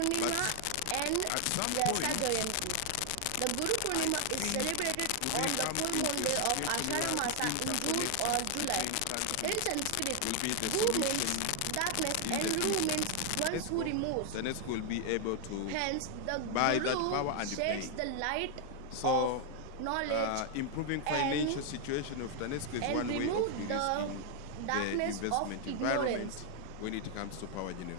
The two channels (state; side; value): different; both; correlation 0.00